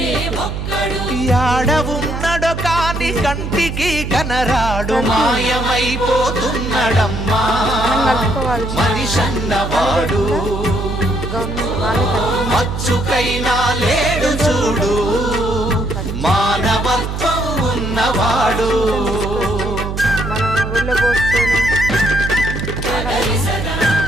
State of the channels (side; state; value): right; noise; hum, 5 dB below the sound